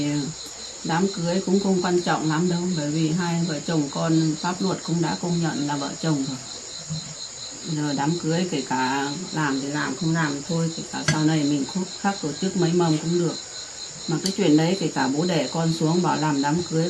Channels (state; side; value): identical; both; correlation 1.00